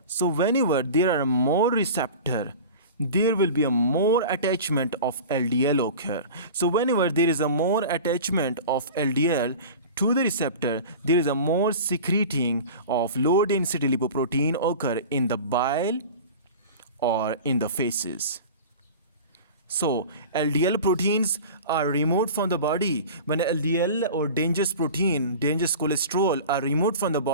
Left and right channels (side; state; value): both; inverted; correlation -0.35